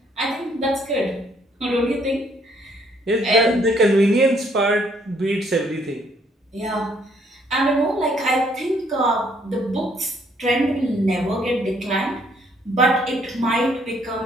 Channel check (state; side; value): normal; both; correlation 0.66